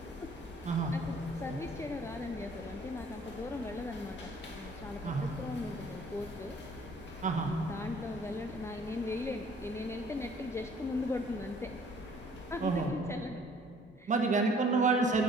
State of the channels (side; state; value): both; normal; correlation 0.57